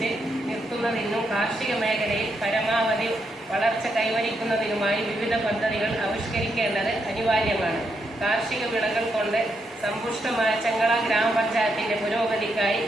നിർത്തുന്നതിനും കാർഷിക മേഖലയിൽ പരമാവധി വളർച്ച കൈവരിക്കുന്നതിനുമായി വിവിധ പദ്ധതികൾ ആവിഷ്കരിക്കേണ്ടത് അനിവാര്യമാണ്. കാർഷിക വിളകൾ കൊണ്ട് സമ്പുഷ്ടമായ ചെങ്കള ഗ്രാമപഞ്ചായത്തിന്റെ പുരോഗതിക്കായി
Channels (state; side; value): normal; both; correlation 0.80